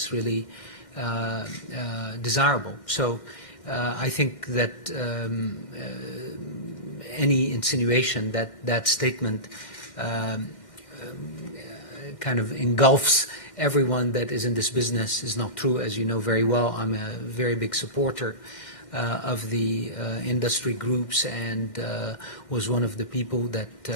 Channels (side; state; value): right; late; 1.6 ms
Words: really desirable. So I think that any insinuation that that statement kind of engulfs everyone that is in this business is not true. As you know very well, I'm a very big supporter of the industry groups, and was one of the people